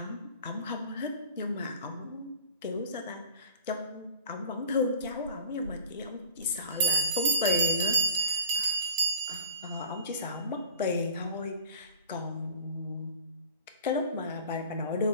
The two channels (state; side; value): inverted; both; correlation -0.41